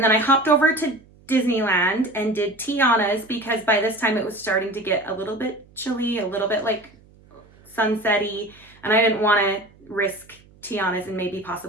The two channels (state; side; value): noise; right; hum, 27 dB below the sound